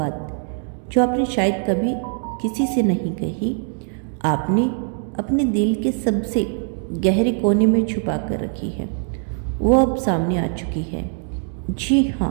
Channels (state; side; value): silent; left; 56 dB below the other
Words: जो आपने शायद कभी किसी से नहीं कही, आपने अपने दिल के सबसे गहरे कोने में छुपा कर रखी है, वो अब सामने आ चुकी है। जी